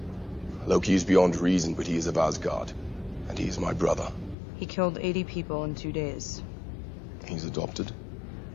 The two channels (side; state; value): right; drops out; at 4.4 s